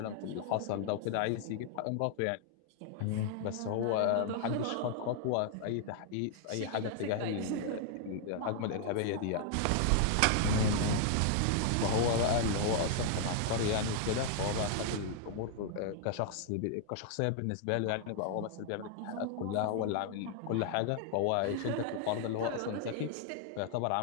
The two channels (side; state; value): both; different; correlation 0.00